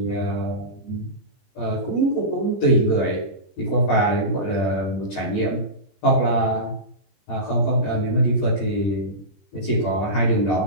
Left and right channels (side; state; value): right; late; 20 ms